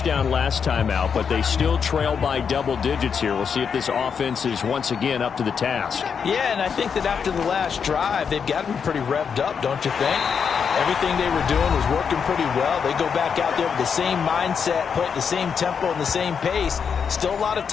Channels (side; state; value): right; quieter; 6.6 dB